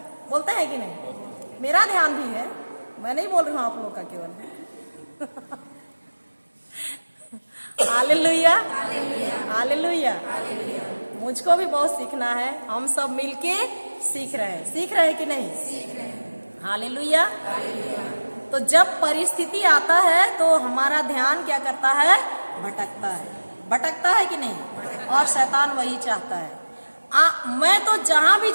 बोलते हैं कि नहीं? मेरा ध्यान भी है, मैं नहीं बोल रही हूँ आप लोग का केवल। Hallelujah, hallelujah. मुझको भी बहुत सीखना है, हम सब मिलके सीख रहे हैं। सीख रहे हैं कि नहीं? सीख रहे हैं। हालेलुया। तो जब परिस्थिति आता है तो हमारा ध्यान क्या करता है? भटकता है। भटकता है कि नहीं? और शैतान वही चाहता है। मैं तो जहां भी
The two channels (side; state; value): both; inverted; correlation -1.00